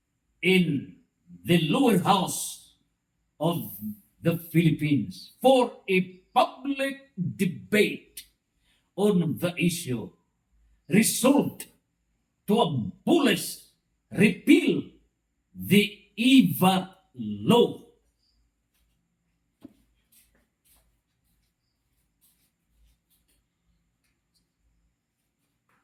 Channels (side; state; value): both; identical; correlation 1.00